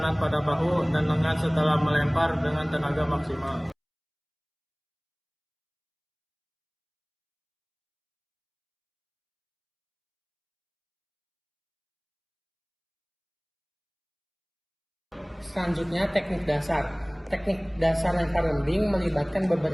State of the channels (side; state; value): both; identical; correlation 1.00